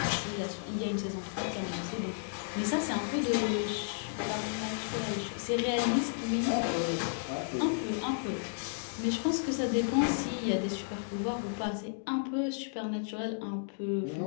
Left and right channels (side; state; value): right; silent; digital silence